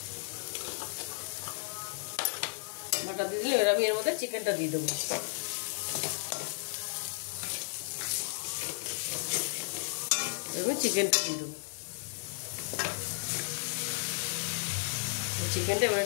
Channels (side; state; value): right; silent; 55 dB below the other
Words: বাটার দিয়ে দিলে এবার আমি এর মধ্যে চিকেনটা দিয়ে দেবো। এবার চিকেনটা দিয়ে দেবো। চিকেনটা এবার